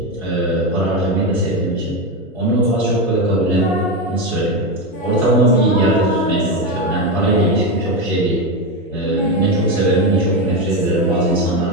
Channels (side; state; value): both; normal; correlation 0.13